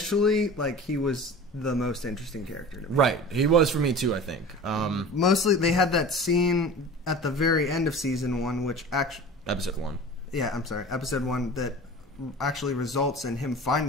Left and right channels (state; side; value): normal; both; correlation 0.37